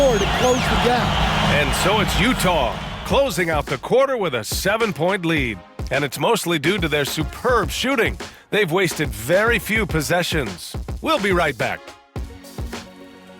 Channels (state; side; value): identical; both; correlation 1.00